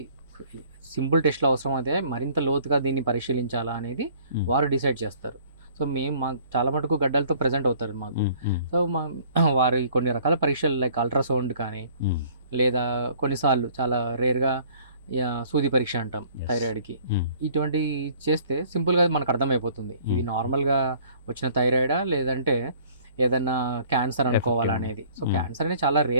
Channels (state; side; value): inverted; both; correlation -0.55